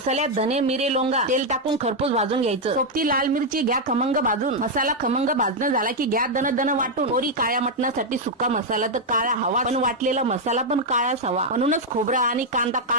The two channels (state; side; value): normal; both; correlation 0.00